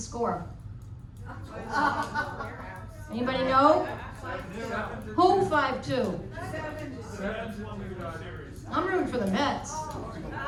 Anybody know? Who 5-2? I'm rooting for the Mets.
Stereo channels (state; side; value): identical; both; correlation 1.00